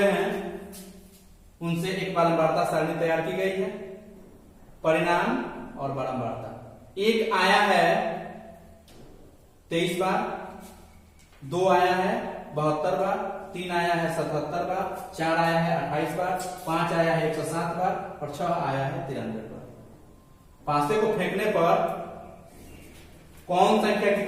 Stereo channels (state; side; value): identical; both; correlation 1.00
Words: हैं उनसे एक बारंबारता सारणी तैयार की गई है। परिणाम और बारंबारता, एक आया है 23 बार, 2 आया है 72 बार, 3 आया है 77 बार, 4 आया है 28 बार, 5 आया है 107 बार और 6 आया है 93 बार। पासे को फेंकने पर कौन संख्या